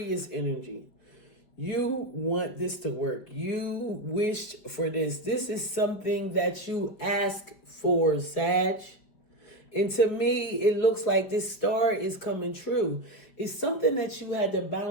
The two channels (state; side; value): late; right; 5.0 ms